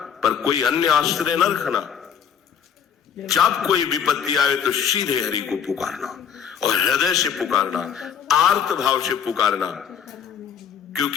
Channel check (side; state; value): right; quieter; 8.0 dB